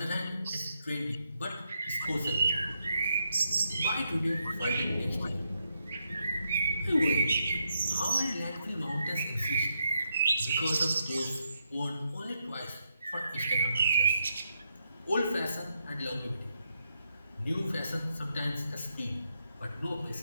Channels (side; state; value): both; inverted; correlation -0.81